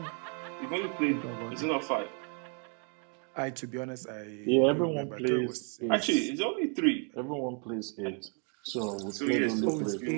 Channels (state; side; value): quieter; left; 38.8 dB